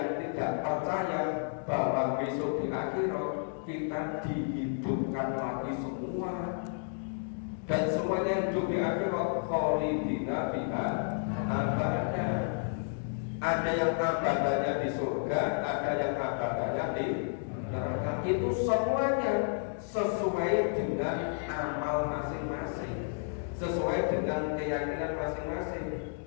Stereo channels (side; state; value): right; silent; digital silence